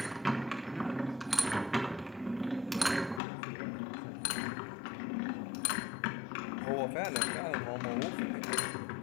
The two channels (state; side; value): drops out; right; at 3.2 s